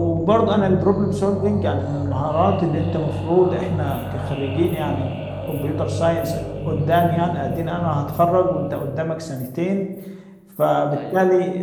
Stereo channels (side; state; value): both; identical; correlation 1.00